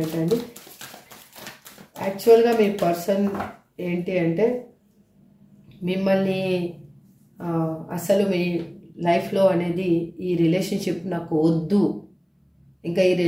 అండి. యాక్చువల్గా మీ పర్సన్ ఏంటి అంటే మిమ్మల్ని అసలు మీ లైఫ్లో అనేది ఈ రిలేషన్షిప్ నాకు వద్దు, ఇంకా ఈ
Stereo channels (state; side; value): identical; both; correlation 1.00